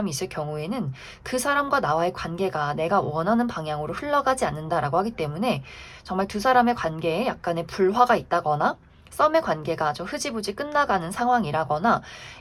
있을 경우에는 그 사람과 나와의 관계가 내가 원하는 방향으로 흘러가지 않는다라고 하기 때문에 정말 두 사람의 관계에 약간의 불화가 있다거나 썸의 관계가 좀 흐지부지 끝나가는 상황이라거나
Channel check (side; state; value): both; identical; correlation 1.00